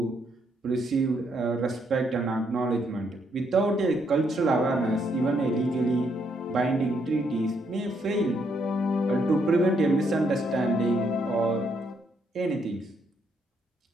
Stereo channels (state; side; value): normal; both; correlation 0.74